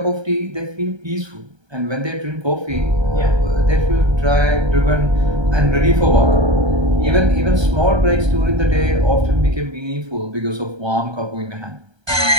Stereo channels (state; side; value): late; left; 1.3 ms